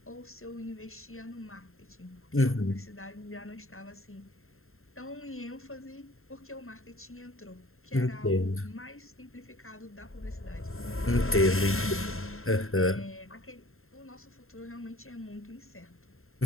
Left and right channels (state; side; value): late; right; 0.61 ms